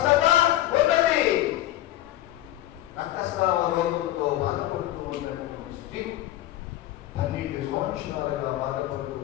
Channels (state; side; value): quieter; right; 14.4 dB